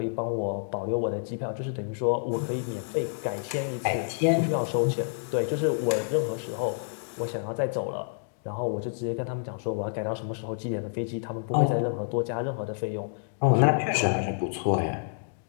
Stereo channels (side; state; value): right; silent; digital silence